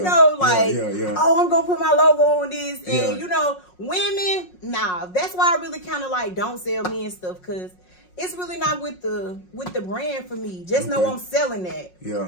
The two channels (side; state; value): right; late; 5.5 ms